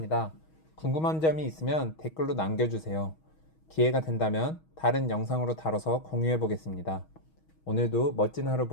궁금한 점이 있으면 댓글로 남겨주세요. 기회가 된다면 다른 영상으로 다뤄서 공유해보겠습니다. 오늘도 멋진 하루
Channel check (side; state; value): right; late; 6.3 ms